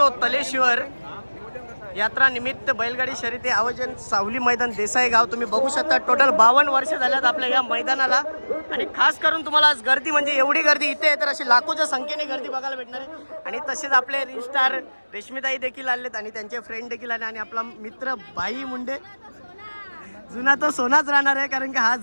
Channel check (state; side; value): inverted; both; correlation -1.00